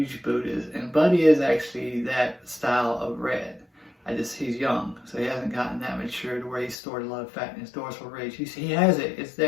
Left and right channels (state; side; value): drops out; right; at 6.8 s